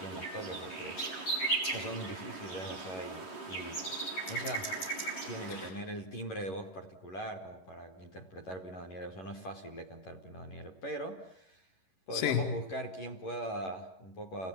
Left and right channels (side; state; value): right; late; 11 ms